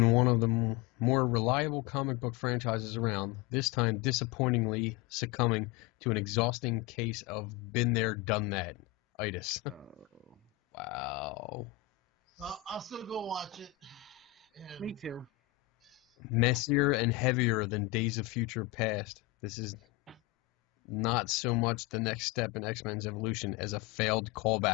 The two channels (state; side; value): quieter; right; 17.6 dB